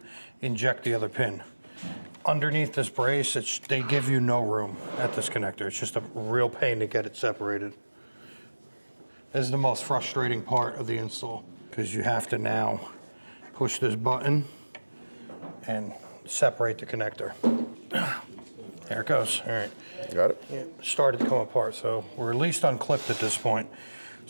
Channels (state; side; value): inverted; both; correlation -1.00